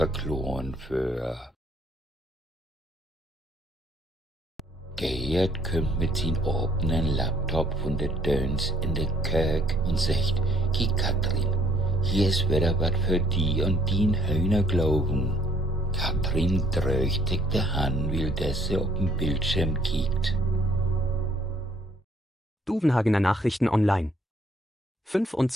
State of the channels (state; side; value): normal; both; correlation 0.62